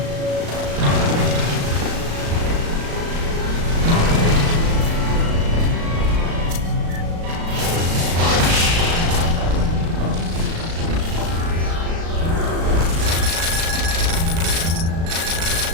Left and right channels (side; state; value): left; late; 36 ms